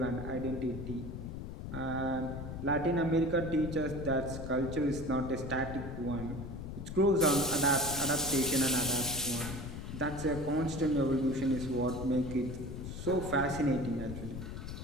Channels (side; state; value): left; noise; rumble, 8 dB below the sound